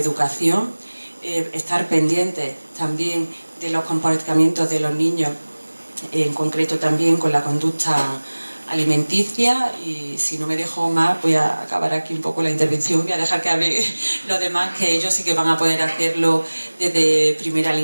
estar pendientes también de los comportamientos de los niños, en concreto también con la conducta alimenticia, y si no me dejo más voy a acabar aquí un poco la intervención, voy a dejar que hable los demás, que ellos sí que van a poder hacerlo desde primera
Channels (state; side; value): inverted; both; correlation -1.00